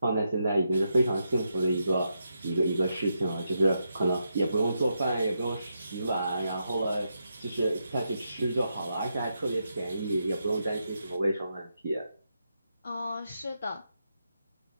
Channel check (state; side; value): inverted; both; correlation -0.83